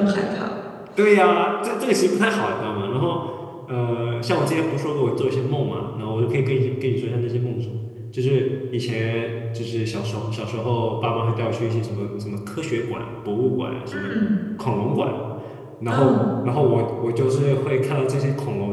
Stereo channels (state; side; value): identical; both; correlation 1.00